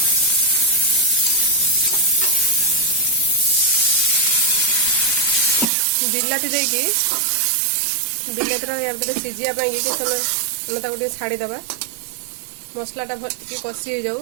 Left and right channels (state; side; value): drops out; left; at 5.7 s